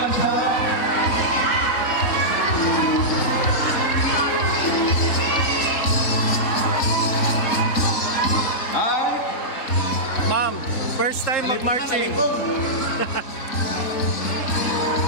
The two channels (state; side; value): late; right; 3.7 ms